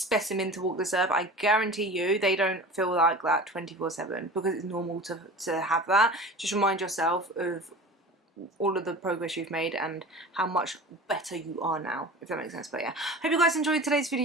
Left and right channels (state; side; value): normal; both; correlation 0.36